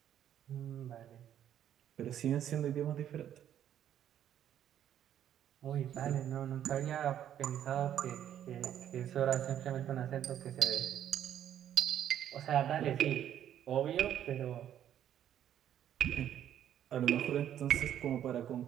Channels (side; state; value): left; quieter; 10.5 dB